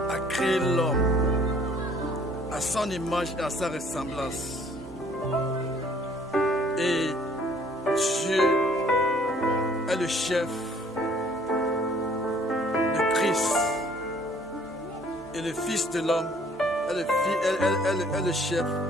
créé l'homme à son image et à sa ressemblance. Et Dieu est le chef de Christ. Et le Fils de l'homme est le chef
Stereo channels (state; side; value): normal; both; correlation 0.58